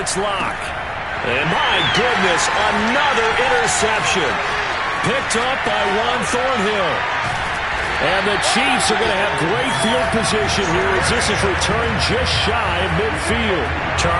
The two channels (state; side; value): identical; both; correlation 1.00